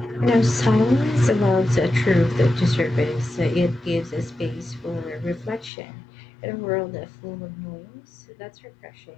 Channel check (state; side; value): drops out; right; at 5.7 s